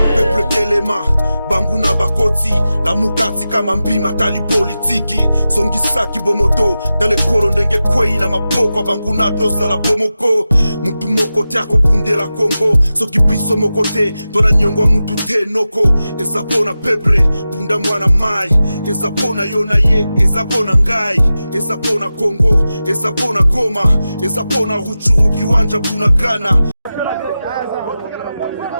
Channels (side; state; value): both; inverted; correlation -0.93